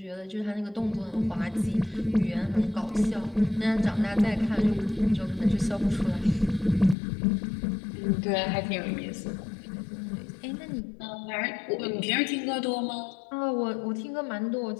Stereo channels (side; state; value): right; drops out; at 7.0 s